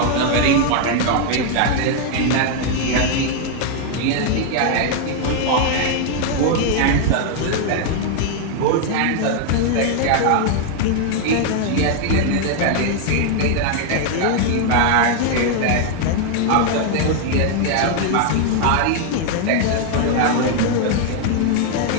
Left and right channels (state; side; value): different; both; correlation 0.00